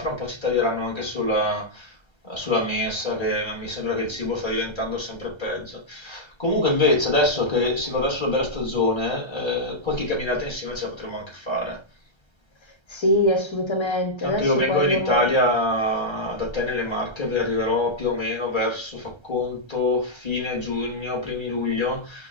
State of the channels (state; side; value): late; right; 1.3 ms